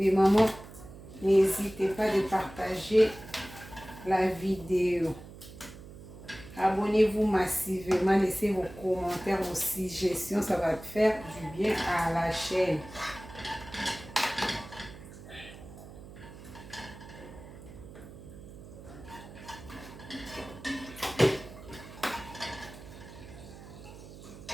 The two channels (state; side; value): noise; right; hum, 16 dB below the sound